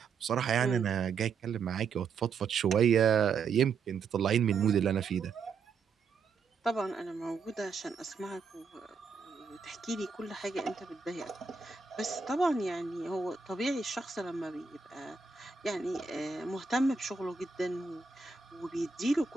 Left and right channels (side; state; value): left; quieter; 5.3 dB